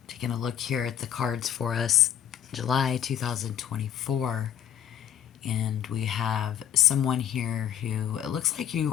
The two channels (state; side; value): quieter; right; 10.2 dB